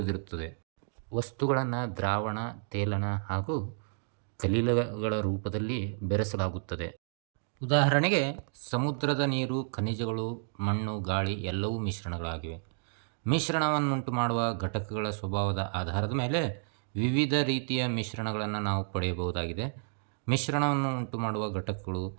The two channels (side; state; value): left; silent; digital silence